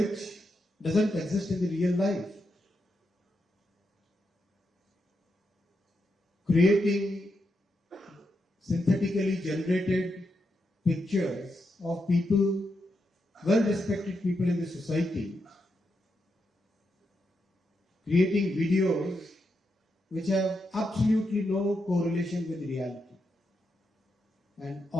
doesn't exist in the real life. Creating synthetically generated pictures of people, well-respected people in the society, creating videos which have absolutely no correlation with reality. And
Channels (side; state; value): both; normal; correlation 0.84